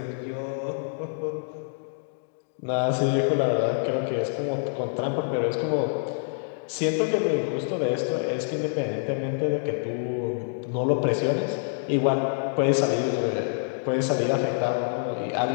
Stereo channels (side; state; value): right; silent; digital silence